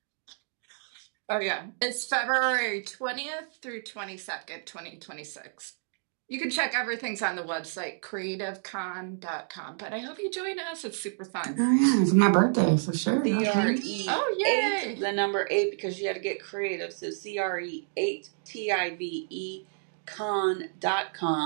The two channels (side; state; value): left; silent; digital silence